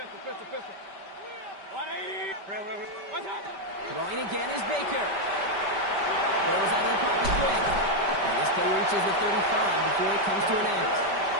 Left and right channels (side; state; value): left; late; 5.1 ms